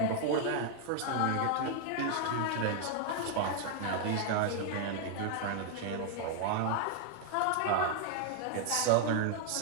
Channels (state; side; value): different; both; correlation 0.00